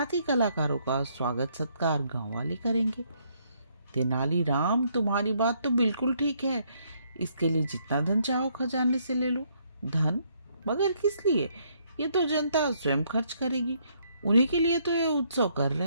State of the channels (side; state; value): both; inverted; correlation -0.70